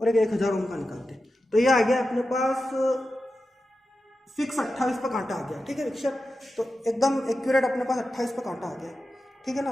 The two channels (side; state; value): both; normal; correlation 0.92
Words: एक 1000 ओम का निकालते हैं। तो ये आ गया अपने पास फिक्स 28 पे कांटा आ गया। ठीक है विक्षेप, तो एकदम एक्यूरेट अपने पास 28 पे कांटा आ गया। ठीक है ना,